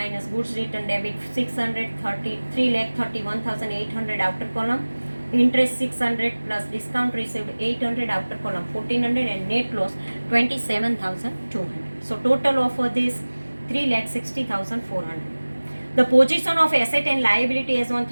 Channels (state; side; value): inverted; both; correlation -1.00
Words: goods return debit 600, 3,31,800 outer column, interest 600 plus discount received 800 outer column 1,400, and net loss 27,200. So total of this 3,60,400. The position of asset and liability as on